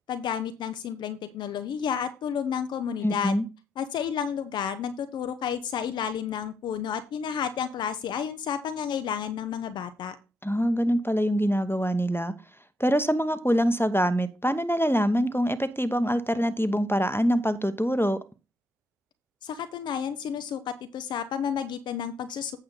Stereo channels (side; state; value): both; normal; correlation 0.78